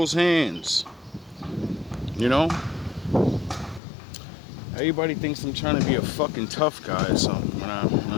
hands. You know? Everybody thinks I'm trying to be a fucking tough guy or something when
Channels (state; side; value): drops out; right; at 3.8 s